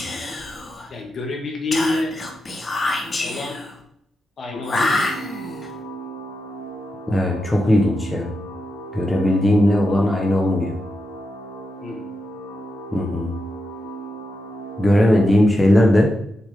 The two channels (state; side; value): normal; both; correlation 0.87